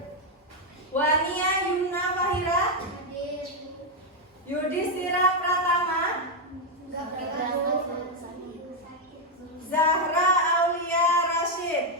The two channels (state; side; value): normal; both; correlation 0.02